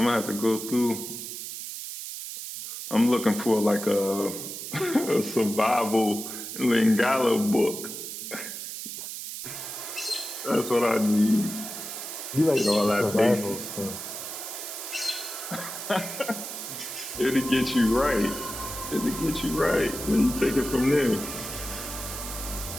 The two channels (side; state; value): right; noise; hiss, 8 dB below the sound